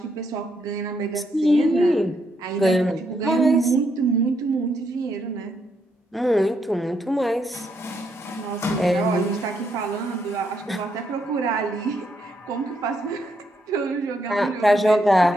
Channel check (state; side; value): normal; both; correlation 0.77